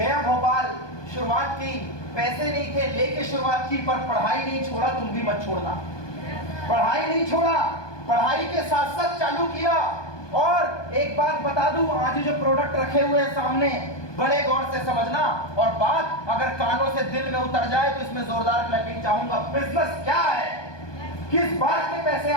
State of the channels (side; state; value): right; late; 1.2 ms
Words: भोपाल, शुरुआत की, पैसे नहीं थे, लेके शुरुआत की, पर पढ़ाई नहीं छोड़ा, तुम भी मत छोड़ना। पढ़ाई नहीं छोड़ा, पढ़ाई के साथ साथ चालू किया। और एक बात बता दूं, आज जो प्रोडक्ट रखे हुए हैं सामने, बड़े गौर से समझना, और बात अगर कानों से दिल में उतर जाए तो इसमें जोरदार क्लैपिंग चाहूंगा। बिजनेस क्या है, किस बात के पैसे